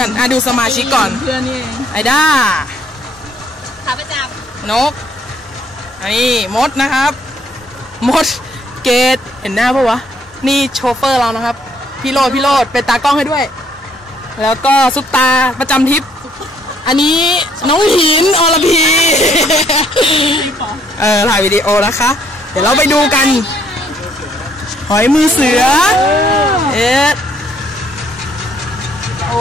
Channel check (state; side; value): normal; both; correlation 0.67